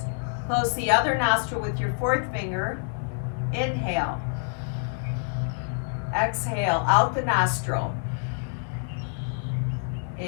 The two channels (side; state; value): right; silent; 60 dB below the other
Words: Close the other nostril with your fourth finger. Inhale. Exhale out the nostril.